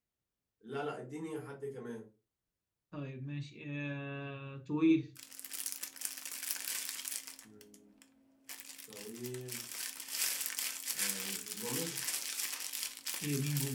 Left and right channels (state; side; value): identical; both; correlation 1.00